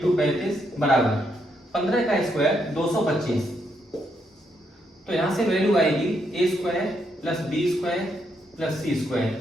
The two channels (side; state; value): both; normal; correlation 0.77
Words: 35 बराबर 15 का स्क्वायर 225। तो यहां से वैल्यू आएगी A square plus B square plus C square